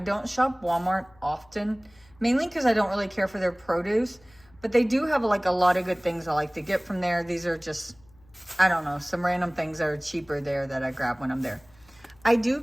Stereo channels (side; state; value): left; noise; hum, 29 dB below the sound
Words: shop Walmart often, mainly because I don't really care for their produce, but they do have like a lot of good things I like to get from there. These are just, I don't know, some random things that are cheaper there that I grab when I'm there. I do